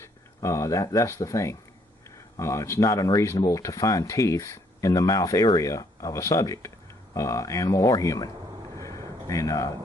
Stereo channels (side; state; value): both; normal; correlation 0.67